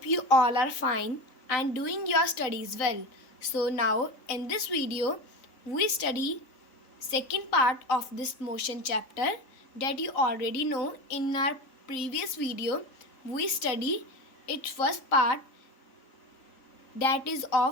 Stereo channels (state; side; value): late; right; 3.9 ms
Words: you all are fine and doing your studies well. So now in this video, we study second part of this motion chapter that you already know. In our previous video, we study its first part, that is